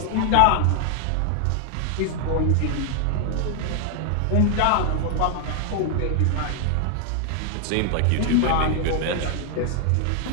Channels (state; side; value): different; both; correlation 0.00